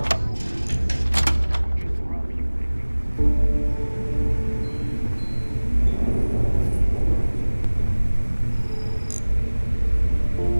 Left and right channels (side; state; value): both; inverted; correlation -1.00